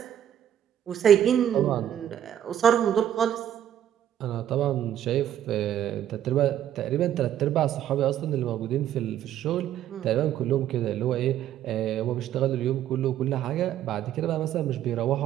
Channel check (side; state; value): left; quieter; 10.7 dB